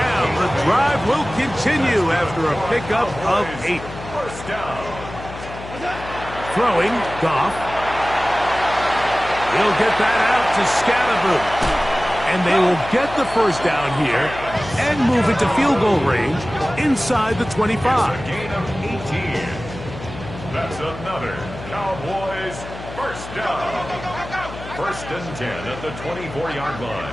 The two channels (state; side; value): noise; left; hum, 12 dB below the sound